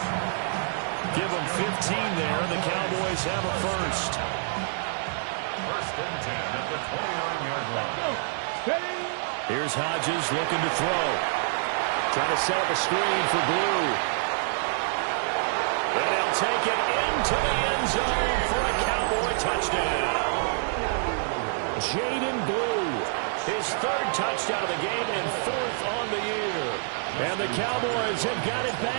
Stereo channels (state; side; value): silent; left; digital silence